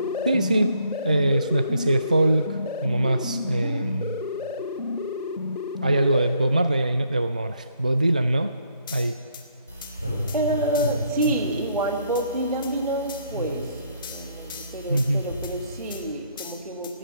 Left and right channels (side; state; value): both; inverted; correlation -0.70